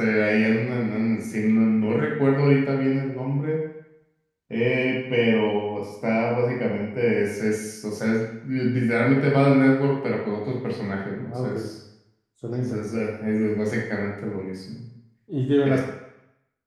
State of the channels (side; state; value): both; identical; correlation 1.00